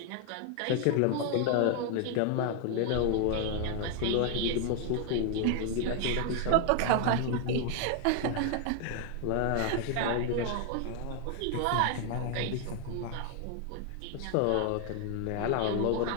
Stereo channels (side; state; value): both; different; correlation 0.00